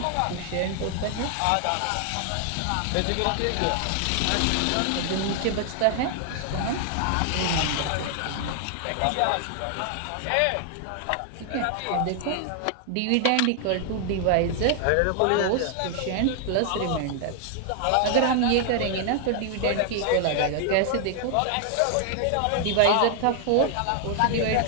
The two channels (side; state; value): both; different; correlation 0.00